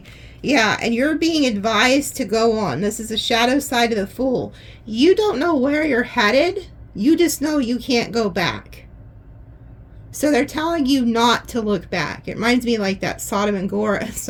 Yeah, and you're being advised to go on. This is a shadow side of the Fool. You don't know where you're headed. You just know you can't go back. So they're telling you not to look back. It reminds me like that Sodom and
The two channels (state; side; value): identical; both; correlation 1.00